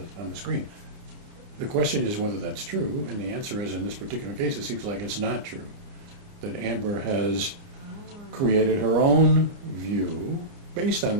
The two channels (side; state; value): left; late; 29 ms